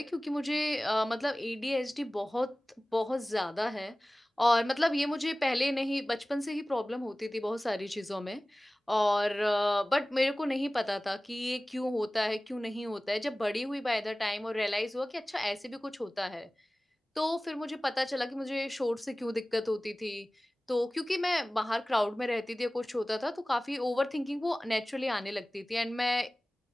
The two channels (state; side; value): normal; both; correlation 0.98